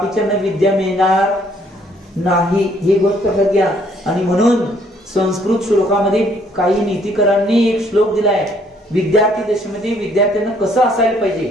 विद्या मिळणार नाही, ही गोष्ट लक्षात घ्या. आणि म्हणून संस्कृत श्लोकामध्ये काही नीतिकरांनी एक श्लोक दिलाय, विद्यार्थी दशेमध्ये विद्यार्थ्यांना कसं असायला पाहिजे.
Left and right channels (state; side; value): normal; both; correlation 0.65